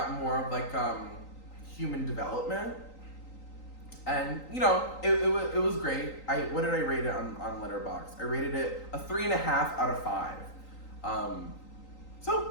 more of like human development. And you know, it was great. What did I rate it on Letterboxd? I rated it a 3.5 out of 5.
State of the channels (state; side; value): late; right; 3.9 ms